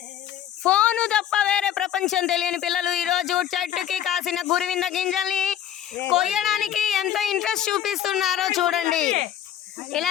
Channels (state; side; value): quieter; right; 10.6 dB